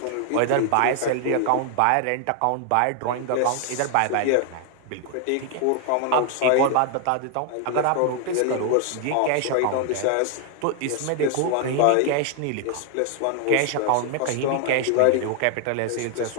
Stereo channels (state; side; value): different; both; correlation 0.00